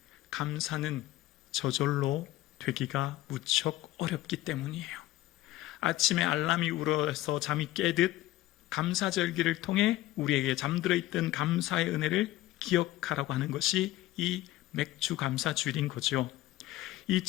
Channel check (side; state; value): right; quieter; 15.9 dB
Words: 감사는 저절로 되기가 무척 어렵기 때문이에요. 아침에 알람이 울어서 잠이 깨듯 감사절기를 통해 우리에게 잠들어 있던 감사의 은혜를 기억하라고 하는 것이 이 맥주 감사주일인 거죠.